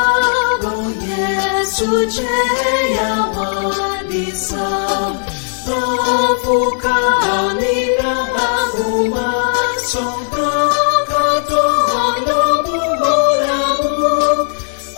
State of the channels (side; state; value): right; silent; digital silence